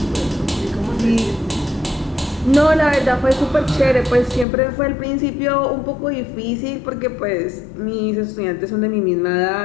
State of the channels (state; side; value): drops out; right; at 4.5 s